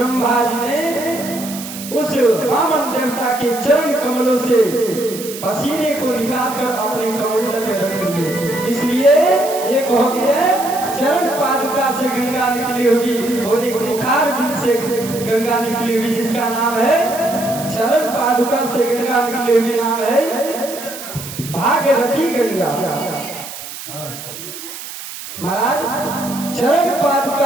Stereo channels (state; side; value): noise; right; hiss, 11 dB below the sound